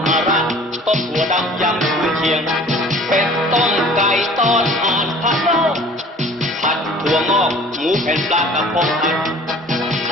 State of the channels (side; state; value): both; normal; correlation 0.48